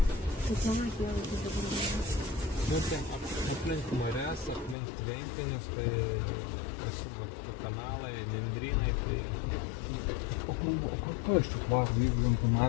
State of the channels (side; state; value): right; drops out; at 4.8 s